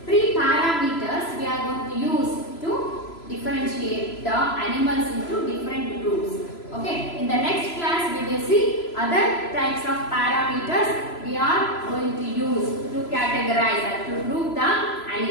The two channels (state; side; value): late; right; 3.0 ms